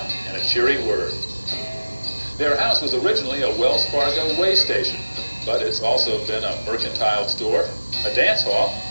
and a cheery word. Their house was originally a Wells Fargo way station, but it's also been a mercantile store, a dance hall,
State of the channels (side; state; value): both; inverted; correlation -1.00